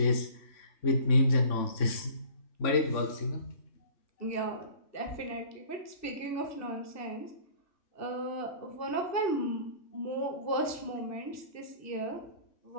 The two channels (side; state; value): right; late; 3.5 ms